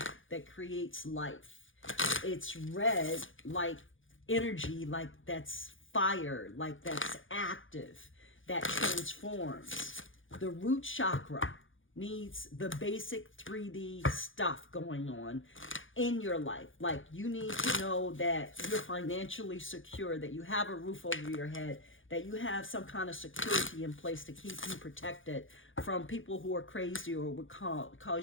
that creates life. It's red like energy, like that's fire, like that's active, that transforms. The root chakra needs the basic 3D stuff going on in your life. Like, you need to know that you're financially secure, that you have a roof over your head, that you have some kind of security in place to keep you protected from people who are crazy or would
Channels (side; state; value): right; late; 0.57 ms